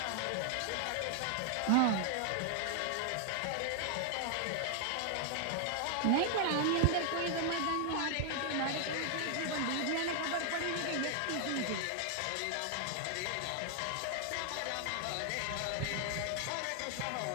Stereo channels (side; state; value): both; different; correlation 0.00